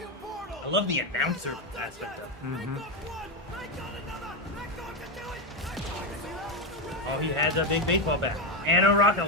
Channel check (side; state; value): both; normal; correlation 0.09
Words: portal. I love the announcer aspect of it. Mm-hmm. Oh, he has a big baseball bat and a rocket